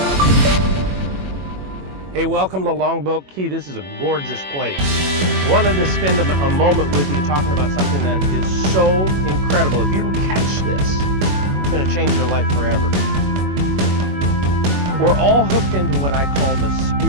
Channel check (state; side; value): late; left; 21 ms